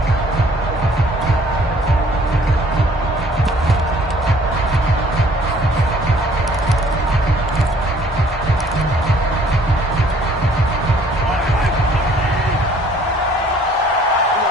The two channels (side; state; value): both; normal; correlation 0.58